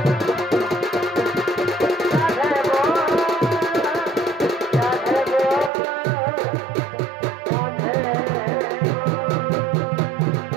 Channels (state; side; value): drops out; left; at 5.7 s